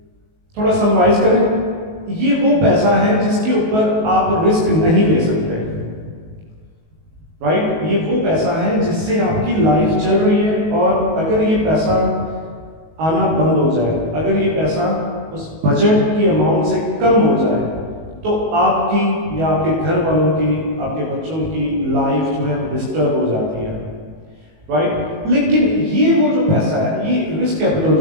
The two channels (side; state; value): left; late; 19 ms